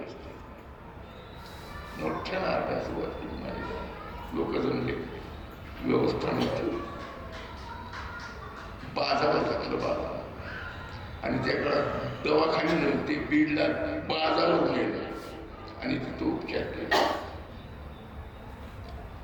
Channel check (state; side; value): identical; both; correlation 1.00